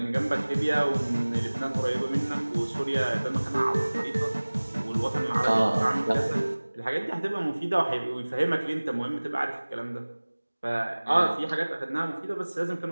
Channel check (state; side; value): inverted; both; correlation -1.00